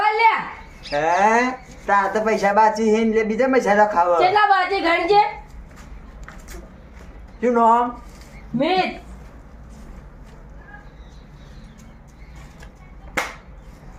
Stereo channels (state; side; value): identical; both; correlation 1.00